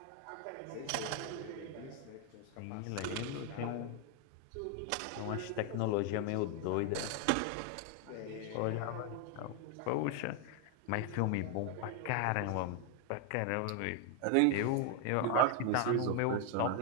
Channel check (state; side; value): different; both; correlation 0.01